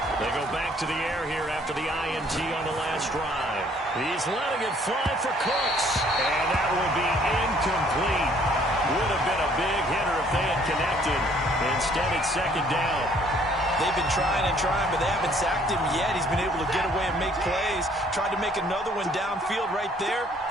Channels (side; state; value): both; normal; correlation 0.61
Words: They go back to the air here after the INT on the last drive. He's letting it fly for Cooks, and that will be incomplete. Would have been a big hitter if they had connected. Instead, it's 2nd down. They've been trying and trying, but they haven't sacked him yet. He's been able to get away and make plays. Tried to make another one downfield right there,